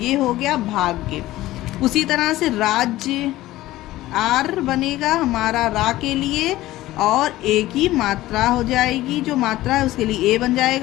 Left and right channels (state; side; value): quieter; right; 16.4 dB